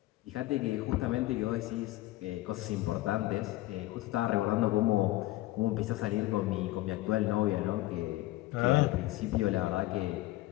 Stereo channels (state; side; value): quieter; right; 17.8 dB